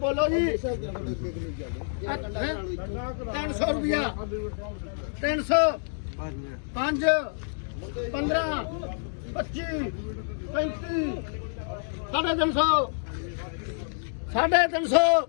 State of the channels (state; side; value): silent; right; digital silence